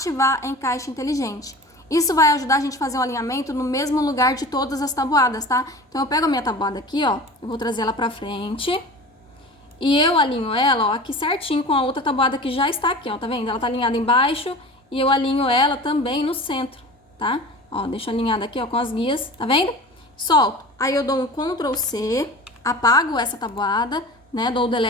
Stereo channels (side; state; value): both; normal; correlation 0.37